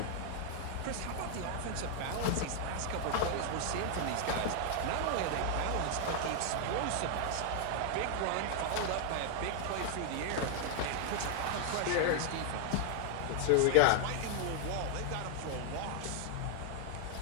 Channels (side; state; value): both; different; correlation 0.00